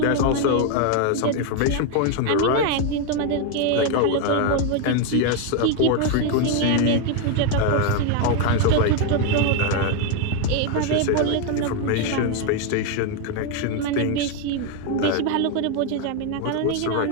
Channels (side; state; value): both; different; correlation 0.01